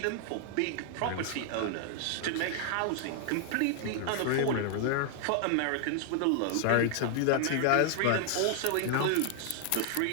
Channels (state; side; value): different; both; correlation 0.00